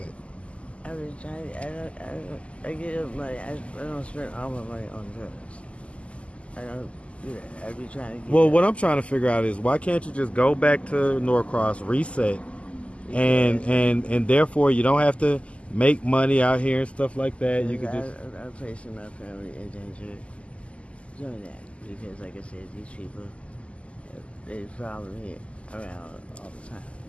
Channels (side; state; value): right; late; 0.059 ms